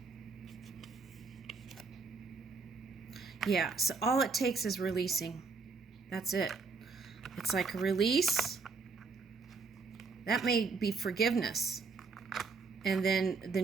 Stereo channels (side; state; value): left; quieter; 4.6 dB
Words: Yeah, so all it takes is releasing. That's it. It's like a release. That may be forgiveness. And then the